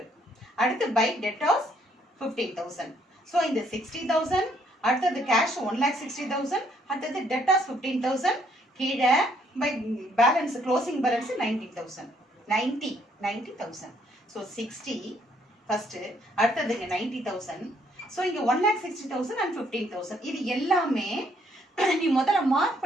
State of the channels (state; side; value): normal; both; correlation 0.67